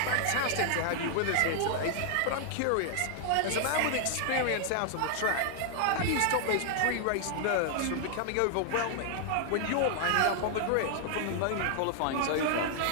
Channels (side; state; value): both; different; correlation 0.00